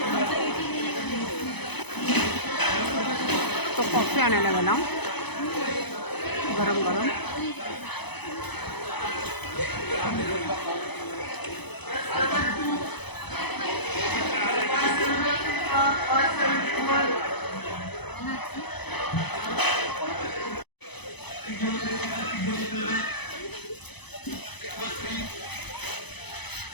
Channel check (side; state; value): right; late; 0.99 ms